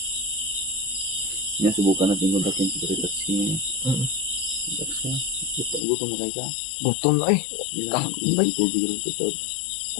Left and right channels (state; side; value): drops out; right; at 5.8 s